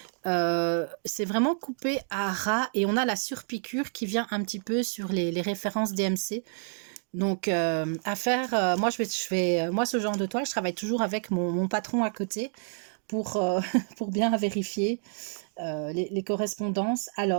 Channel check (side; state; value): left; silent; 59 dB below the other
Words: c'est vraiment coupé à ras et on a la surpiqûre qui vient un petit peu sur les références DMC. Donc à faire, moi moi ce genre de toile, je travaille toujours avec mon patron à côté pour, pour bien vérifier les correspondances.